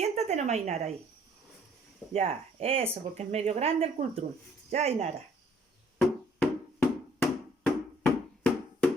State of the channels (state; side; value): normal; both; correlation 0.60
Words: nomás, Ainara, ahí. Ya, eso, porque es medio grande el cultrún. Ya, Ainara.